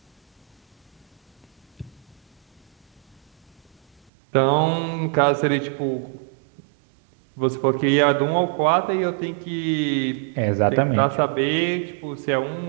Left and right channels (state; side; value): drops out; left; at 4.1 s